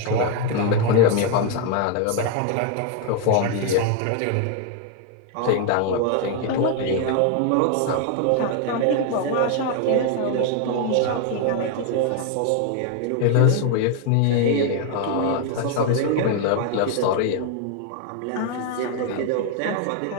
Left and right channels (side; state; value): both; different; correlation 0.01